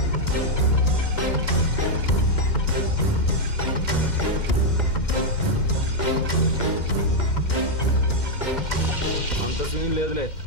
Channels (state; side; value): late; right; 2.1 ms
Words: అంత సీన్ లేదులే.